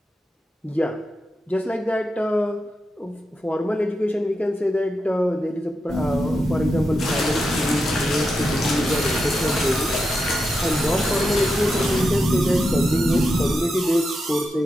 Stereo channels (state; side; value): normal; both; correlation 0.87